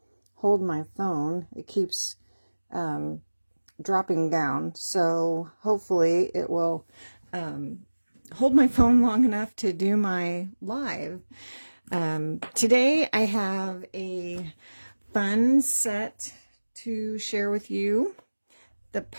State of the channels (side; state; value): both; inverted; correlation -1.00